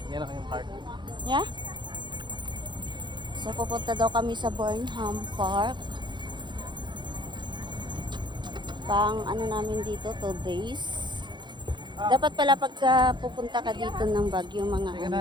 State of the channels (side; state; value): left; late; 0.22 ms